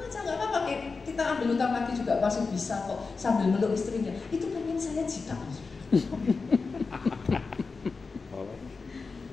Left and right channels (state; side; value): quieter; right; 4.4 dB